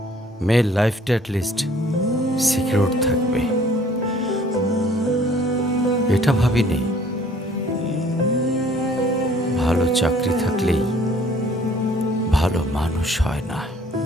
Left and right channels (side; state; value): both; normal; correlation 0.56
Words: মেয়ের লাইফটা অ্যাটলিস্ট সিকিউর থাকবে। এটা ভাবিনি ভালো চাকরি থাকলেই ভালো মানুষ হয় না।